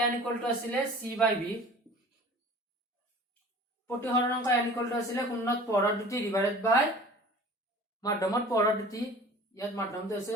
n = আছিল c/v প্ৰতিহৰণ অংক n = আছিল কোণত পৰৰ দুটি ডিভাইডেড বাই মাধ্যমত পৰৰ দুটি ইয়াত মাধ্যমটো আছে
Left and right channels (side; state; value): both; normal; correlation 0.44